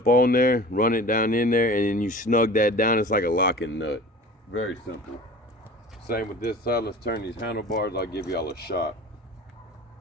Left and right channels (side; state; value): both; normal; correlation 0.40